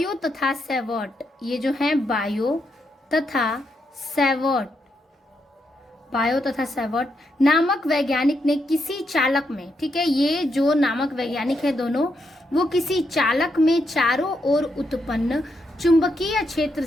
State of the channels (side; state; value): both; normal; correlation 0.81